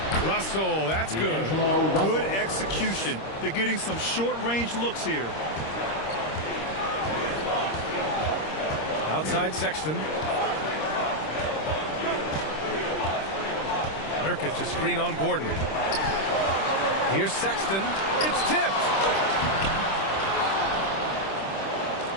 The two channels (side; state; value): right; late; 26 ms